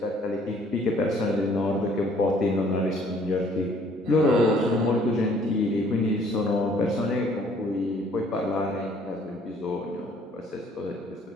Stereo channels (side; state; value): both; normal; correlation 0.59